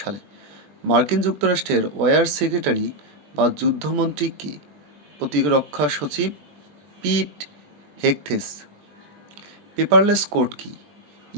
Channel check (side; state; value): left; late; 20 ms